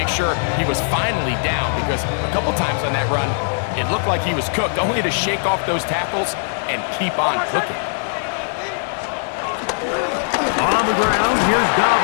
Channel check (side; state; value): right; silent; digital silence